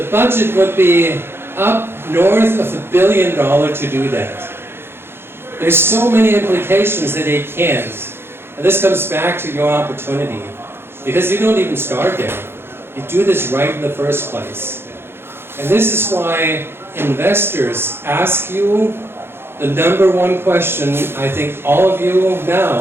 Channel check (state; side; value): late; left; 0.11 ms